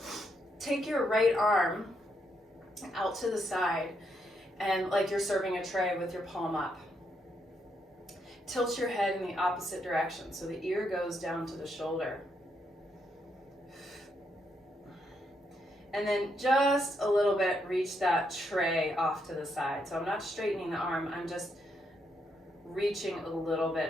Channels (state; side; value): normal; both; correlation 0.78